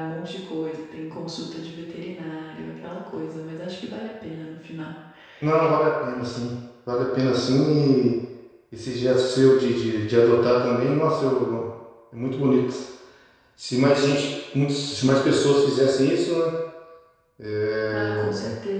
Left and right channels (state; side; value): identical; both; correlation 1.00